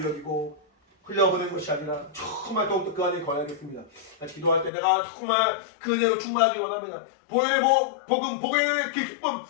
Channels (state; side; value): drops out; right; at 4.7 s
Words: 여기고 흘려보낸 것이 아니라 정말 더욱더 그 안에 거하겠습니다. 같이 기도할 때 내가 정말 그 은혜로 충만하기 원합니다. 보혈의 복음, 보혈의 그 기쁨